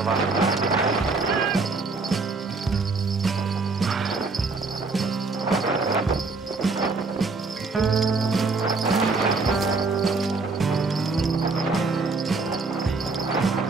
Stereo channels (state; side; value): quieter; left; 4.0 dB